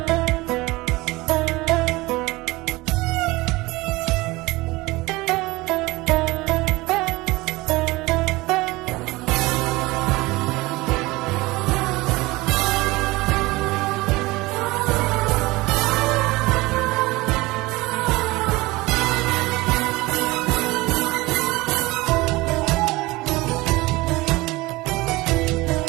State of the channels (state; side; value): quieter; left; 21.2 dB